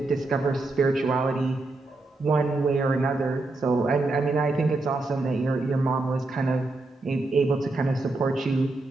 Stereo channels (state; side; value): quieter; left; 3.1 dB